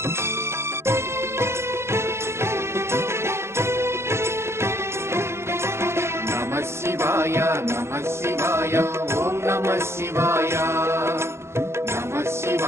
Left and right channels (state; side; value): late; left; 0.13 ms